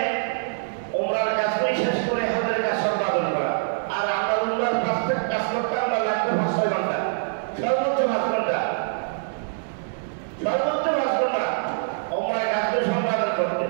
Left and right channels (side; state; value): left; silent; digital silence